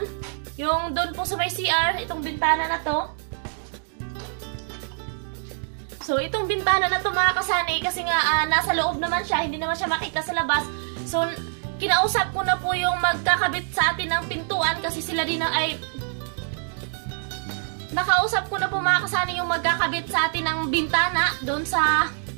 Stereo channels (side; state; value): left; silent; digital silence